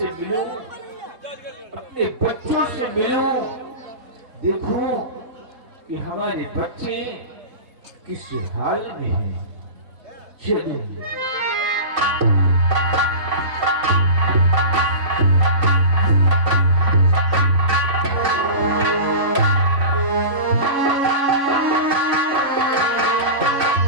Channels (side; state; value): left; late; 3.6 ms